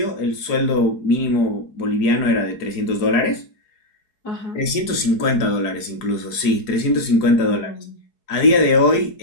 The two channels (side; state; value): right; late; 4.8 ms